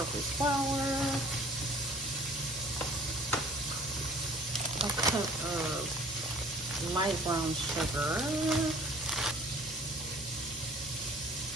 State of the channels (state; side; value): normal; both; correlation 0.52